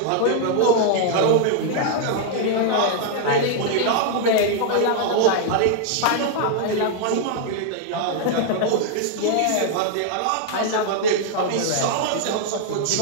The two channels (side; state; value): both; different; correlation 0.00